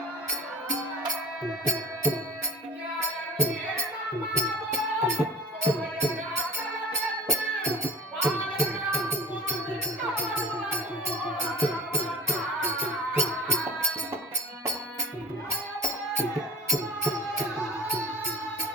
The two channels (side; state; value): both; normal; correlation 0.39